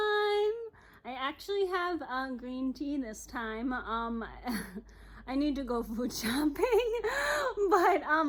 I actually have green tea this time. I need to go food shopping,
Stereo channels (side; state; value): both; identical; correlation 1.00